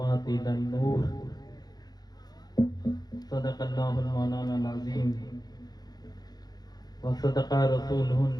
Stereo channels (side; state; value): right; late; 0.19 ms